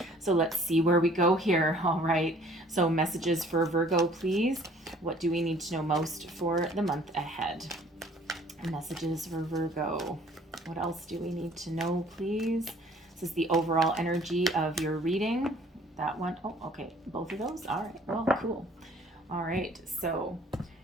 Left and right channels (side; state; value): both; normal; correlation 0.55